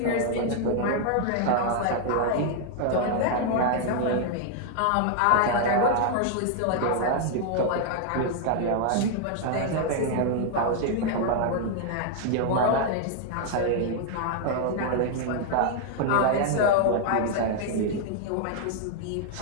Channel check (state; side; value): different; both; correlation 0.00